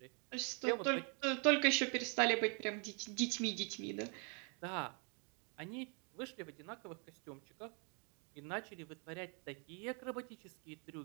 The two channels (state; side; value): quieter; left; 36.8 dB